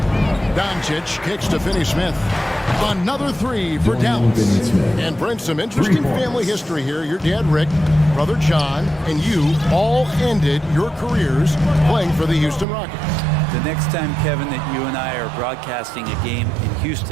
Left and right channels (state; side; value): drops out; left; at 12.7 s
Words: Doncic kicks to Finney-Smith. Another 3 for Dallas. And brings some interesting family history here. Your dad, Rick, brother John, and you all ended your careers playing for the Houston Rockets. The next time, Kevin, that you and I are broadcasting a game in